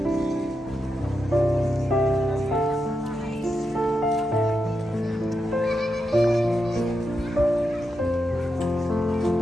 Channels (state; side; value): normal; both; correlation 0.87